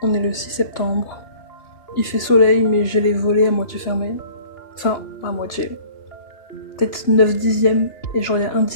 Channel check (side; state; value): right; late; 3.0 ms